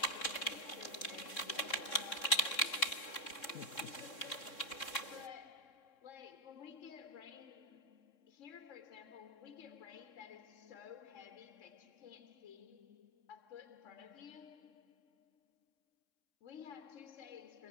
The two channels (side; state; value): right; late; 3.6 ms